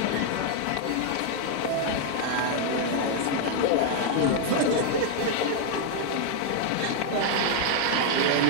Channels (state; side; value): different; both; correlation 0.00